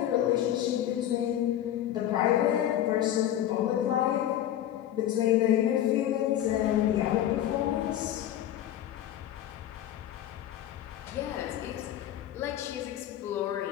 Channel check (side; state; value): right; quieter; 11.8 dB